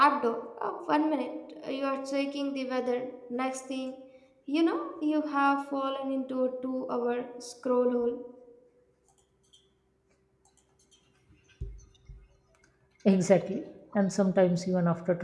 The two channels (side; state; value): both; identical; correlation 1.00